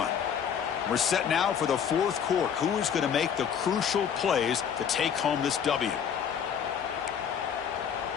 We're set now for the fourth quarter. Who is going to make the crucial plays to take home this W?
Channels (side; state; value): right; quieter; 7.9 dB